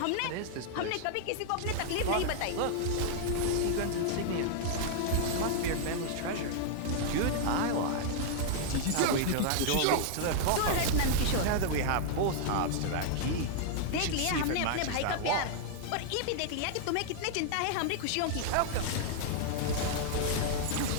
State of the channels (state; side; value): different; both; correlation -0.01